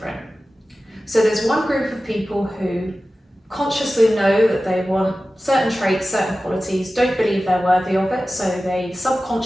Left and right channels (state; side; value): normal; both; correlation 0.95